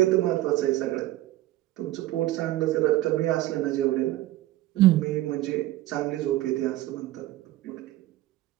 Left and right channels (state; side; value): quieter; left; 15.8 dB